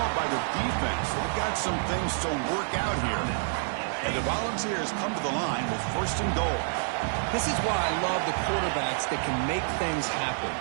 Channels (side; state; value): left; silent; digital silence